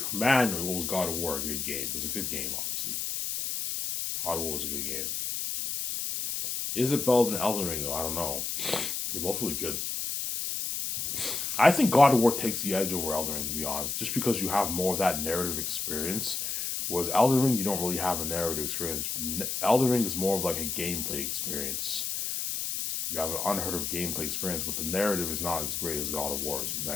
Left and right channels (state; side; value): noise; left; hiss, 2 dB below the sound